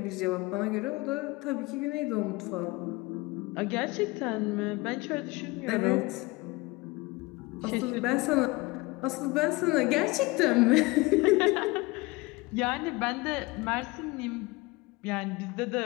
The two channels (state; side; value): quieter; right; 22.9 dB